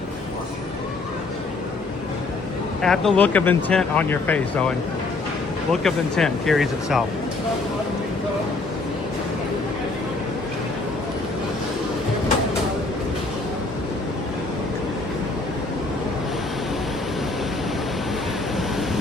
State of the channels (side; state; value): right; quieter; 3.5 dB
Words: Have the look of intent on your face, Owen. Look of intent carries itself.